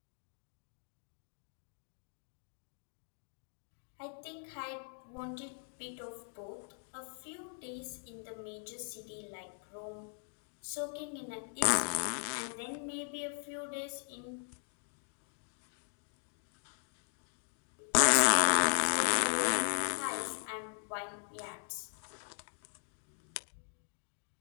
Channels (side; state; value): right; silent; 52 dB below the other